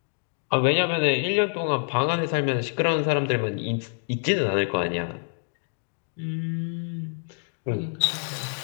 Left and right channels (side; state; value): right; silent; digital silence